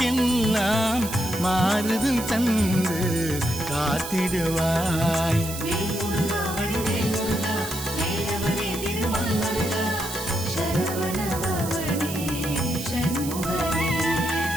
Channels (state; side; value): noise; right; hiss, 8 dB below the sound